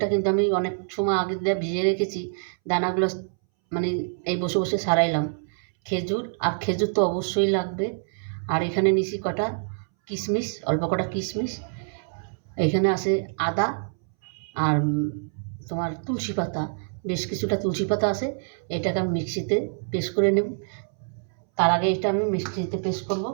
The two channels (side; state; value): left; silent; 61 dB below the other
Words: কিন্তু আমি অনেক সময় আগে দিয়ে ভিজিয়ে রেখেছি, দানাগুলো মানে এই বসে বসে সারাইলাম। খেজুর তো অবশ্যই লাগবে। আর এখানে নিছি কটা কিশমিশ, অল্প কটা কিশমিশ। এখানে আছে আদা, আর তোমার তুলসী পাতা, বেশ কিছুটা তুলসী পাতা আছে। এটাকে আমি মিক্সিতে পেস্ট করে নেব। তার আগে এটা আমি মিক্সিতে পেস্ট করব।